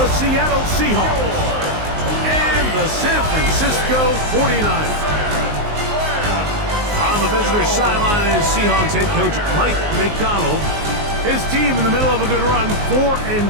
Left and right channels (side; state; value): left; late; 19 ms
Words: Seattle Seahawks and the San Francisco 49ers. On the visitor's sideline is Seahawks head coach Mike McDonald. His team in the middle of a good run,